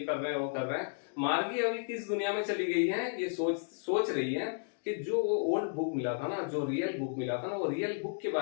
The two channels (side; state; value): right; silent; digital silence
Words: रहे हैं, वो कर रहे हैं। मार्गी अभी किस दुनिया में चली गई है, ये सोच रही है कि जो वो ओल्ड बुक मिला था ना, जो रियल बुक मिला था ना, वो रियल बुक के